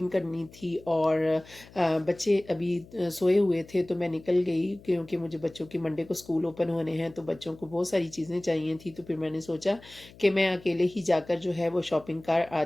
करनी थी। और बच्चे अभी सोए हुए थे तो मैं निकल गई, क्योंकि मुझे बच्चों के मंडे को स्कूल ओपन होने हैं तो बच्चों को बहुत सारी चीज़ें चाहिए थी। तो फिर मैंने सोचा कि मैं अकेले ही जाकर जो है वो शॉपिंग कर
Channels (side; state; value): left; noise; hum, 22 dB below the sound